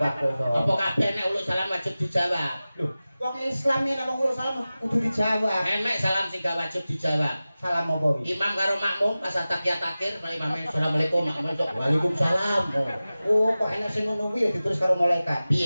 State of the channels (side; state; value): both; inverted; correlation -0.96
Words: kok iso. Apa kabeh nek uluk salam wajib dijawab? Lho, wong Islam nek wong uluk salam kudu dijawab. Emek salam sing gak wajib dijawab. Salam apa iki? Imam karo makmum pas takiyat akhir mari imame asalamualaikum makmum waalaikumsalam. Oh, kok enek sing ngono kuwi ya ditulis karo malaikat.